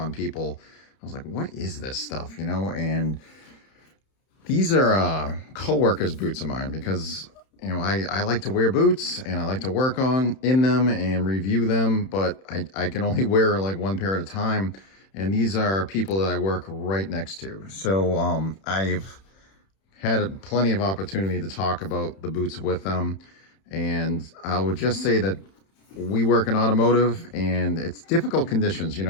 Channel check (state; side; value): late; right; 31 ms